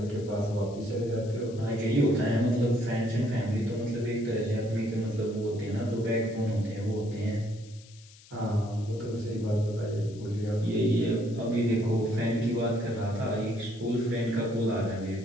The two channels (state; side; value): noise; left; hiss, 23 dB below the sound